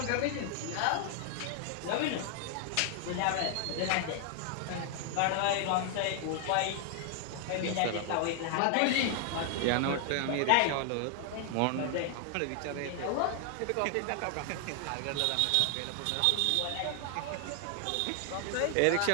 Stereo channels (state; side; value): different; both; correlation 0.00